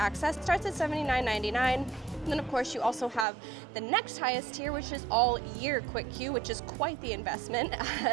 It starts at $79.99. And then of course you also have the next highest tier, which is all year Quick Queue, which is quite the investment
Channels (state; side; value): drops out; left; at 3.2 s